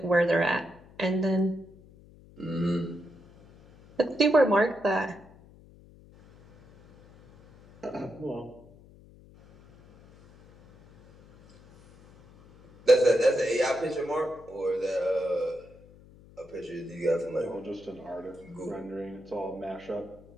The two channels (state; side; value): noise; left; hum, 24 dB below the sound